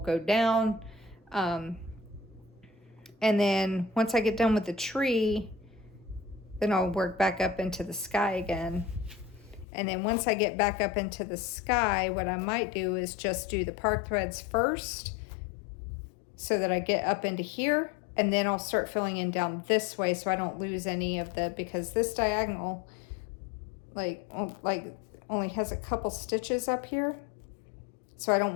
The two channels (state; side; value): drops out; right; at 9.7 s